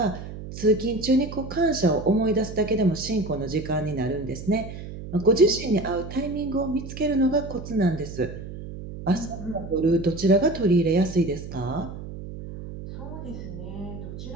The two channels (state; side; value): noise; right; hum, 10 dB below the sound